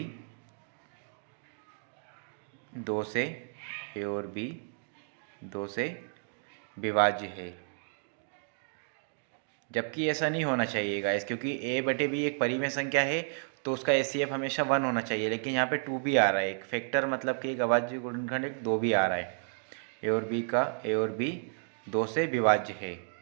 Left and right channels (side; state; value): left; silent; 56 dB below the other